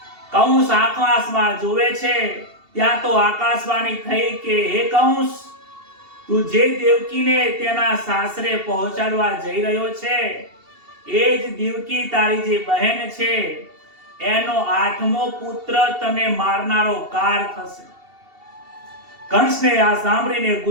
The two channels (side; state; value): left; late; 2.7 ms